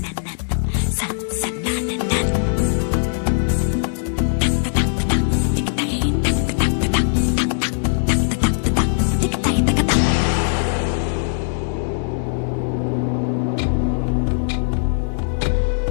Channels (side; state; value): right; silent; digital silence